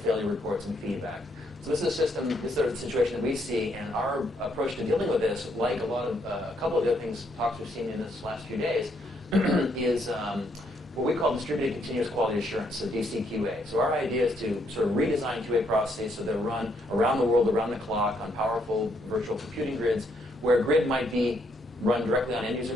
failure reports and feedback. So this is a situation that we see, and our approach to dealing with this, like a couple of the other talks we've seen in this last few days, is what we call distributed continuous quality assurance, so DCQA. So our idea is to sort of redesign QA processes so they're run around the world, around the clock, on powerful virtual computing grids, where a grid might be run directly on end-user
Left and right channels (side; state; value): both; normal; correlation 0.73